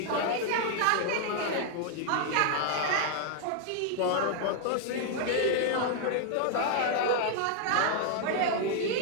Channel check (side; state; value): both; different; correlation 0.00